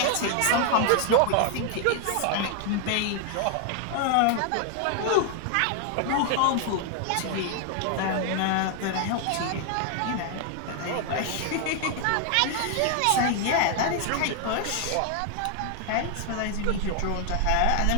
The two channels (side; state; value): both; different; correlation 0.00